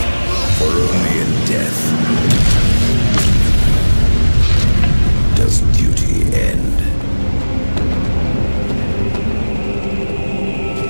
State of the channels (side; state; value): both; inverted; correlation -1.00